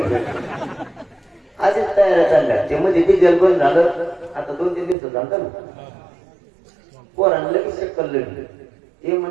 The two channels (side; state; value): left; drops out; at 5.0 s